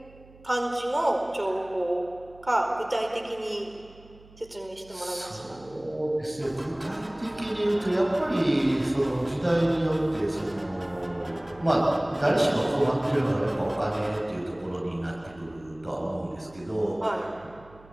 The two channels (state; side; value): noise; right; hum, 24 dB below the sound